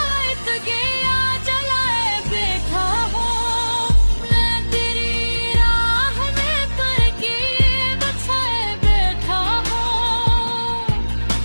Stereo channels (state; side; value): inverted; both; correlation -1.00